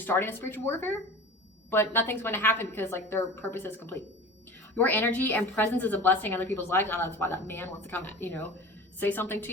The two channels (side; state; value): both; normal; correlation 0.36